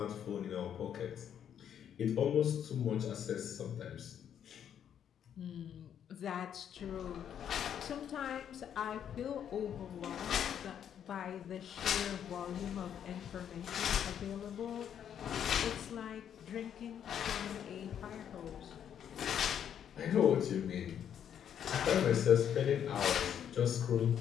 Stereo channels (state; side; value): quieter; right; 9.1 dB